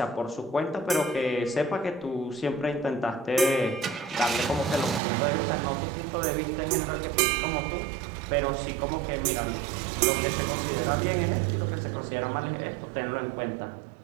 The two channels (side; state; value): left; drops out; at 5.0 s